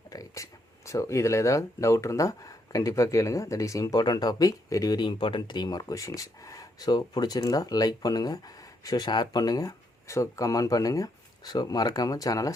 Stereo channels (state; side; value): normal; both; correlation 0.76